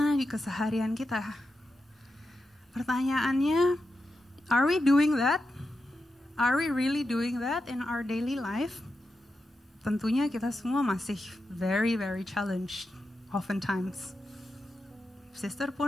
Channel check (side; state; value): both; normal; correlation 0.88